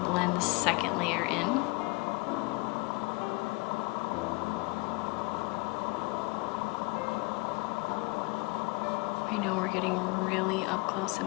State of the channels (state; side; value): quieter; right; 26.6 dB